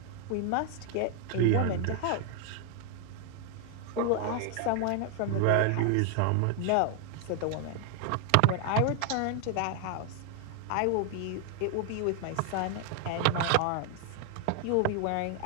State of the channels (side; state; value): both; different; correlation 0.00